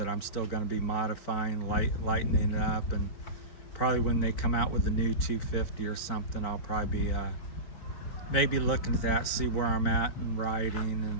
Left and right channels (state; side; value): late; right; 4.4 ms